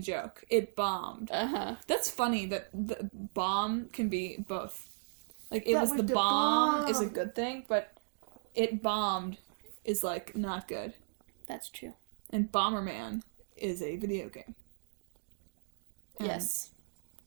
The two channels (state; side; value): silent; left; digital silence